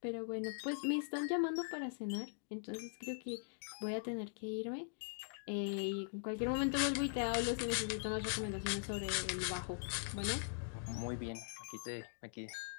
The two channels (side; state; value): right; silent; digital silence